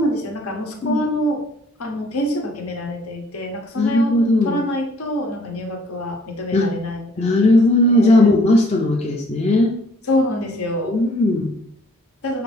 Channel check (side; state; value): both; normal; correlation 0.60